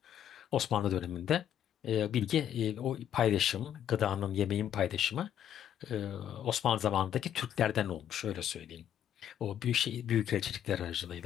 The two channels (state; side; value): quieter; right; 10.1 dB